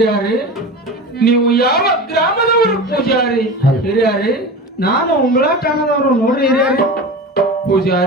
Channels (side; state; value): both; normal; correlation 0.30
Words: ನೀವು ಯಾವ ಗ್ರಾಮದವರು ಪೂಜಾರಿ? ಹಿರಿಯಾರಿ, ನಾನು ಉಂಬಳ ಠಾಣದವರು ನೋಡ್ರಿ ಹಿರಿಯಾರಿ.